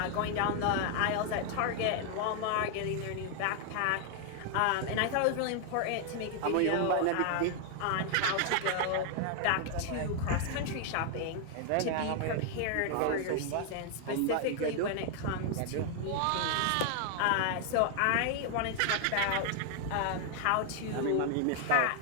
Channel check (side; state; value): both; different; correlation 0.00